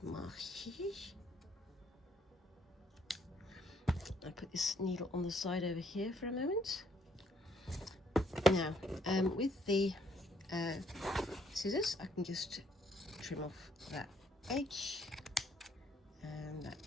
my shears. I put this needle on the side over here for a moment. Now, with the scissors, I can just trim off that edge and that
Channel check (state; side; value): normal; both; correlation 0.68